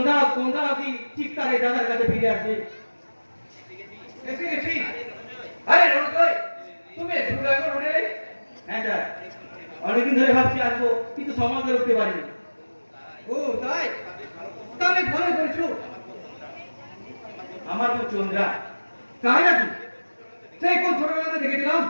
কি ঠিক তার এই দাদার কাছে ফিরে আসবে। এসে গেছি। আরে রোজই তুমি শুরু এখন উঠে হ্যাঁ স্যার, অনেকদিন ধরে ভাবছি আসবো কিন্তু সময় করে উঠতে পারিনি। ও তাই, তাহলে ভালো করেছো। আমার বোন চন্দ্রা তাই নাকি? সেই কোন ছোটবেলাতে দেখেছিলাম।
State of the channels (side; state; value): both; inverted; correlation -1.00